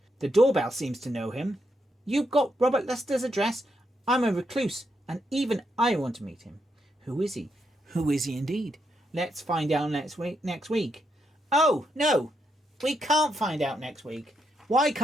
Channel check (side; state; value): both; normal; correlation 0.80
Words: The doorbell seems to know him. You've got Robert Luster's address? I'm a recluse, and even I want to meet him. Who is he? Who is he indeed? Let's find out next week. Oh, no. We can't find out next week. Why